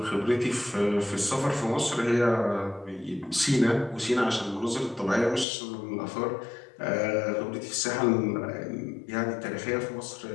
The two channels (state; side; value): drops out; right; at 5.5 s